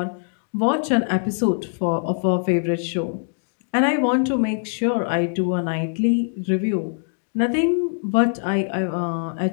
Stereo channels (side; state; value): right; silent; digital silence